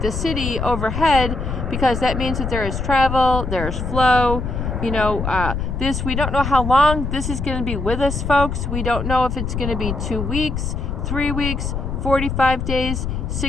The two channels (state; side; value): noise; left; rumble, 3 dB below the sound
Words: the city overhead, because that means that there is travel, there's flow. We don't know how long this is going to be with us, folks. We don't know if it's going to be 2 weeks, 3 weeks, 45 days,